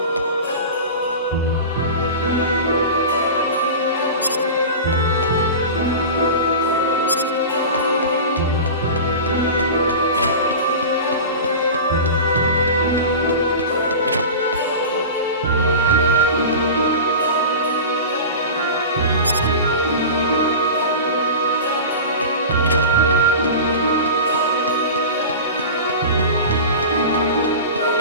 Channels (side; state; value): both; inverted; correlation -0.31